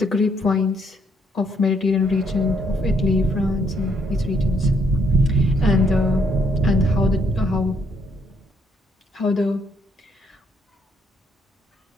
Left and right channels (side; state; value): both; normal; correlation 0.71